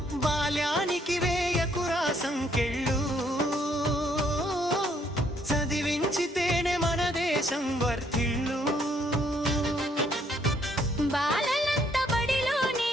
బాల్యానికి వేయకురా సంకెళ్ళు, చదివించితేనే మన దేశం వర్ధిల్లు. బాలలంతా బడిలోనే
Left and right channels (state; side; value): normal; both; correlation 0.68